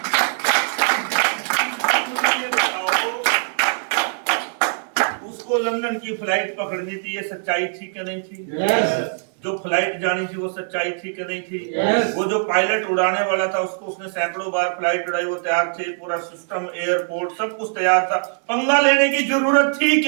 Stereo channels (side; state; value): left; silent; digital silence